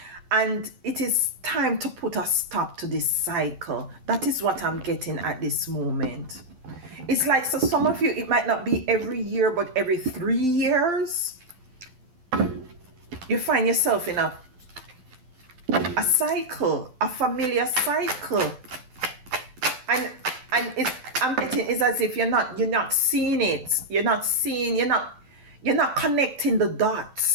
and it is time to put a stop to this cycle. That is what I'm getting at this moment. It's like, so some of you, it might not be every year, but every 3 years you find yourself in a cycle, a familiar cycle, and I'm getting is as if you're not seeing it. You're not connecting the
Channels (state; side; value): late; left; 12 ms